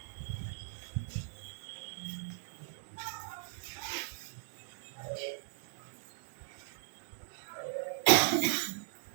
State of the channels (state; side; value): silent; left; 53 dB below the other